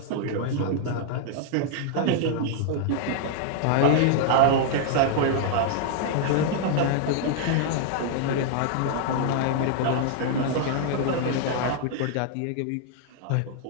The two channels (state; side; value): different; both; correlation 0.00